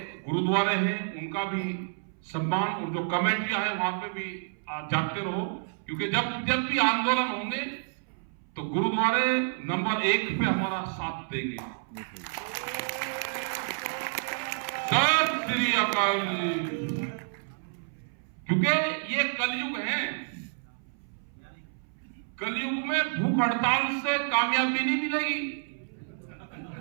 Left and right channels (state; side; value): silent; left; 58 dB below the other